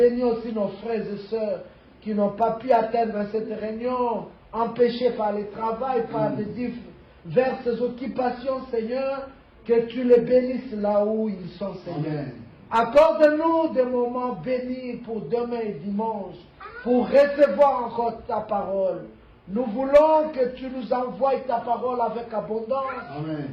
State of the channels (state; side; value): identical; both; correlation 1.00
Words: aussi nos frères et sœurs qui n'ont pas pu atteindre cette réunion, empêchés par le travail, par des diverses occupations, Seigneur, que tu les bénisses là où ils sont, Seigneur. Accorde-nous des moments bénis pour demain et dimanche, pour recevoir encore ta parole. Nous voulons que tu nous envoies ta parole avec abondance. Amen.